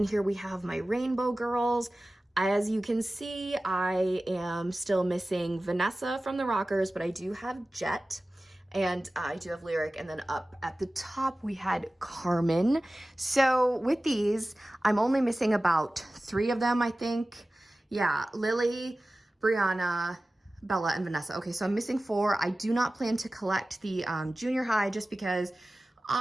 here we have my rainbow girls. As you can see, I am still missing Vanessa from the Rockers, but I do have Jet. And I do have Lyric, and then up at the top we had Carmen. So with these, I'm only missing about 3 of them, I think. Yeah, Lily, Brianna, Bella, and Vanessa. Okay, so I'm missing 4. I do not plan to collect the junior high just because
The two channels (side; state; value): both; normal; correlation 0.96